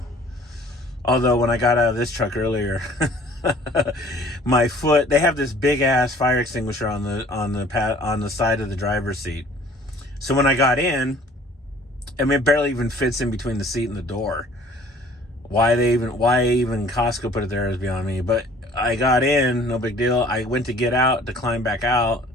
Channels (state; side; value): normal; both; correlation 0.53